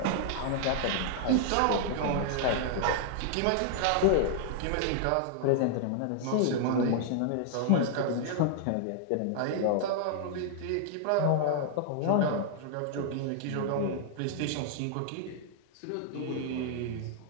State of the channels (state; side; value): different; both; correlation -0.01